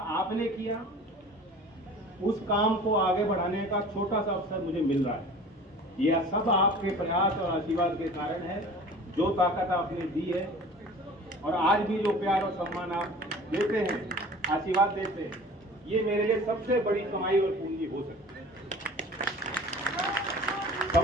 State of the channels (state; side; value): normal; both; correlation 0.43